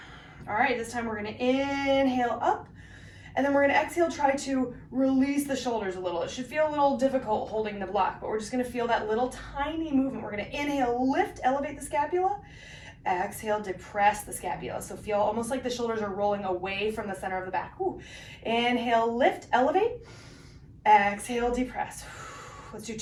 All right, this time we're gonna inhale up. And then we're gonna exhale, try to release the shoulders a little. It should feel a little difficult holding the block, but we're just gonna feel that little tiny movement. We're gonna inhale, lift, elevate the scapula. Exhale, depress the scapula. So feel almost like the shoulders are rolling away from the center of the back. Whew. Inhale, lift, elevate. Exhale, depress. Let's do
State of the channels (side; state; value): both; identical; correlation 1.00